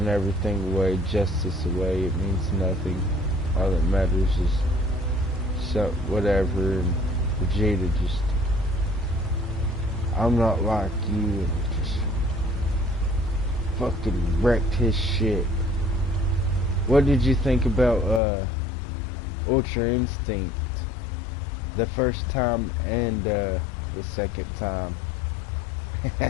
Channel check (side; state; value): right; drops out; at 18.2 s